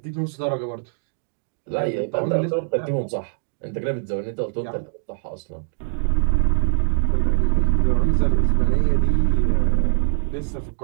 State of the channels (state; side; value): silent; left; digital silence